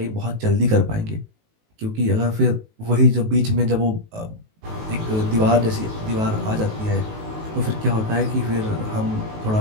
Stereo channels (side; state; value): left; late; 19 ms